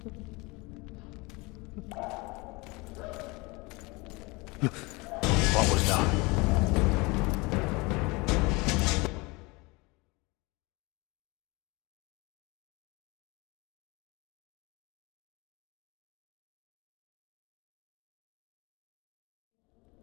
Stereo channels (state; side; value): quieter; right; 25.4 dB